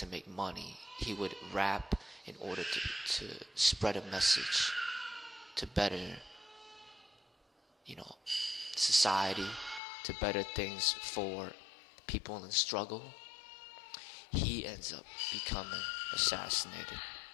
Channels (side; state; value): right; drops out; at 9.8 s